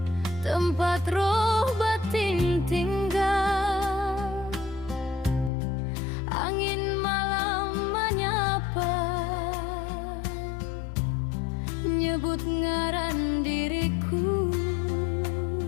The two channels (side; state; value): right; drops out; at 5.5 s